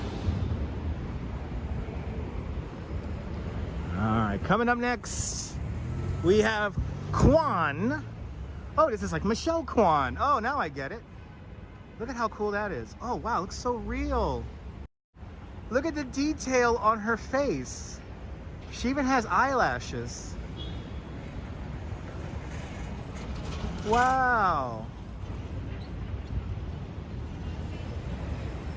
Alright, coming up next, we have Kwan. Oh, this is like Michelle Kwan. Oh, now I get it. Look at how cool that is. Oh, wow, it looks so real. Look at the detail on her face. She even has eyelashes. Wow.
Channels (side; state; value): both; identical; correlation 1.00